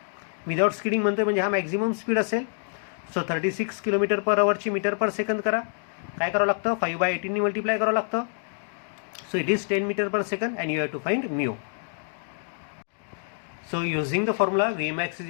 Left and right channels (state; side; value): silent; right; 60 dB below the other